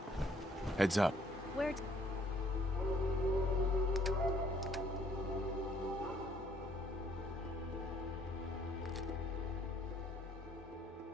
Heads up. Where?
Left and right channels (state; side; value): normal; both; correlation 0.64